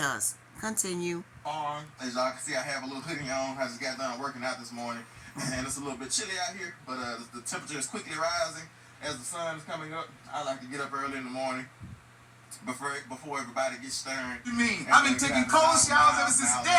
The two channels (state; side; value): identical; both; correlation 1.00